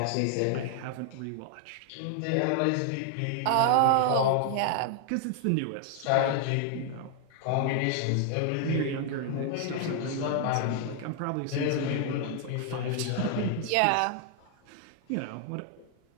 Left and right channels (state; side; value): different; both; correlation 0.00